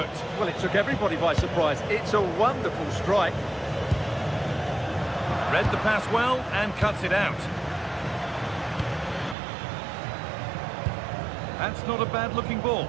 Well, it took everybody by surprise. It's a wonderful strike. Read the pass well and cuts it out. That's not a bad-looking ball.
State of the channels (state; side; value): drops out; left; at 9.3 s